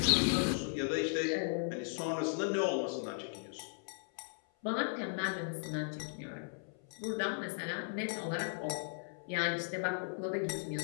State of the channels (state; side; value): silent; right; 53 dB below the other